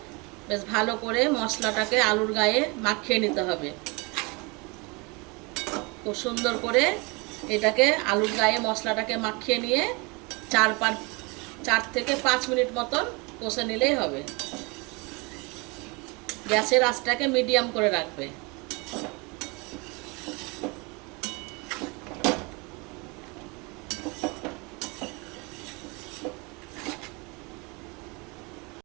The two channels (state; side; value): quieter; left; 28.5 dB